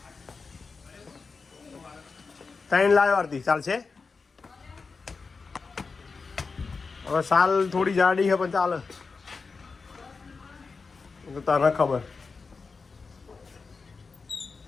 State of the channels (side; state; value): right; quieter; 4.6 dB